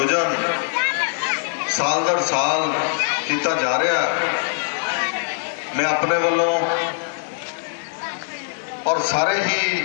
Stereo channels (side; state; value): right; silent; digital silence